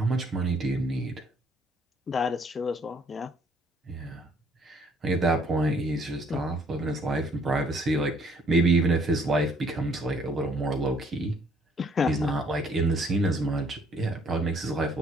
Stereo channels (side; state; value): both; normal; correlation 0.63